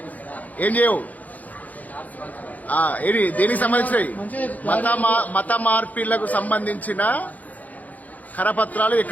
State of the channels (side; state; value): right; late; 0.078 ms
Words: ఏం చేయవు? ఏది దేనికి సంబంధించినవి? మత మార్పిళ్లకు సంబంధించిన కరపత్రాలు